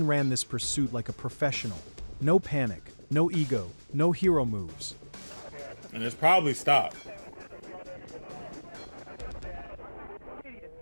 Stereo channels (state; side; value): inverted; both; correlation -1.00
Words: ran this pursuit like a professional. No panic, no ego, no hero moves. And it's probably stopped.